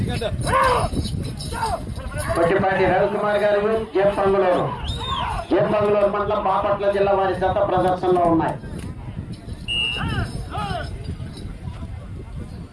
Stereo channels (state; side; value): identical; both; correlation 1.00